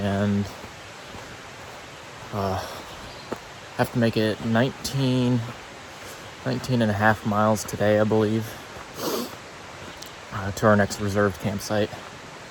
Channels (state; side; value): identical; both; correlation 1.00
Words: have to make it 19 and a half miles today, I believe, to our next reserved campsite.